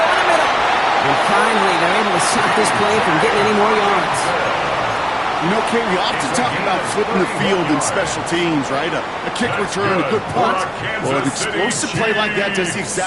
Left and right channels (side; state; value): both; identical; correlation 1.00